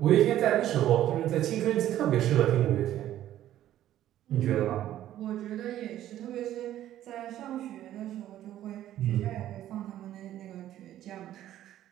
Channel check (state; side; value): quieter; left; 12.6 dB